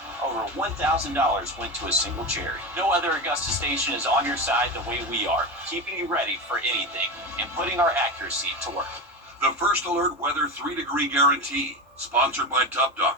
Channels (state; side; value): normal; both; correlation 0.21